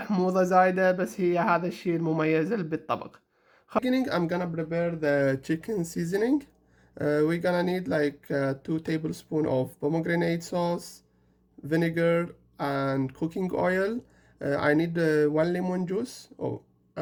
زايدة، بس هي هذا الشيء المميز بالطبق. Beginning, I'm gonna prepare the chicken seasoning. We're gonna need like 2 tablespoons of pomegranate sauce, vinegar, and cooking oil. I need 1 lemon juice.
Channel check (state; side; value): identical; both; correlation 1.00